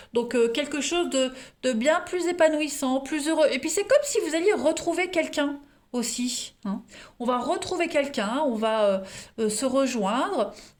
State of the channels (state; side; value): identical; both; correlation 1.00